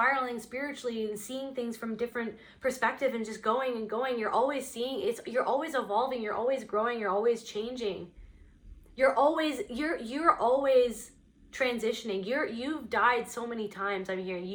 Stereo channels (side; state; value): both; identical; correlation 1.00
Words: spiritually and seeing things from different perspective and just going and going. You're always seeing it. You're always evolving. You're always growing. You're always changing. You're always transitioning. You've died so many times. I'm hearing